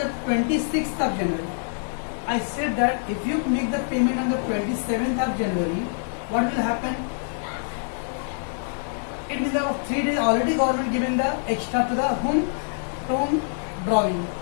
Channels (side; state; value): right; silent; digital silence